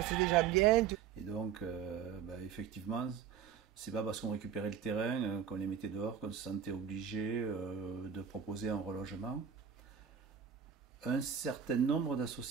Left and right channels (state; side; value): quieter; left; 8.0 dB